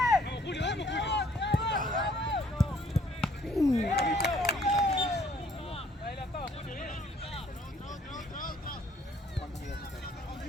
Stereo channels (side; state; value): both; normal; correlation 0.61